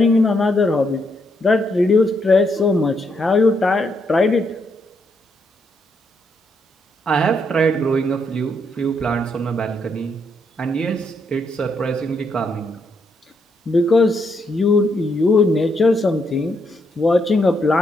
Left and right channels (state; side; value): normal; both; correlation 0.77